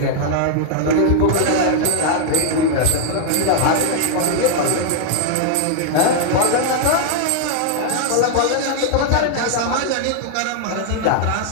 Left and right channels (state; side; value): different; both; correlation 0.00